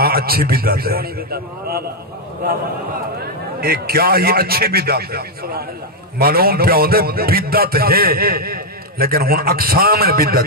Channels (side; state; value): both; normal; correlation 0.00